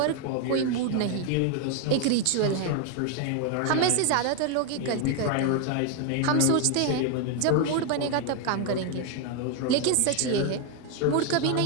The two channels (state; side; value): different; both; correlation 0.01